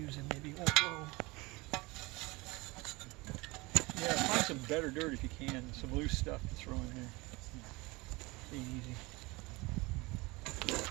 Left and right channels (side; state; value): left; quieter; 23.6 dB